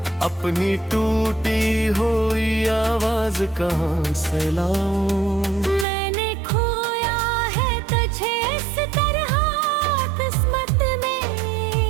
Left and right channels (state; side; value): drops out; left; at 5.9 s